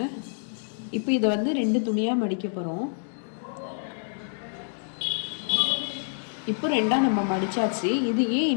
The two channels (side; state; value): right; silent; 60 dB below the other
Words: இப்போ இதை வந்து 2 துணியாக மடிக்க போகிறோம். இப்போ 2ஆக நம்ம மடித்தாச்சு. இது ஏன்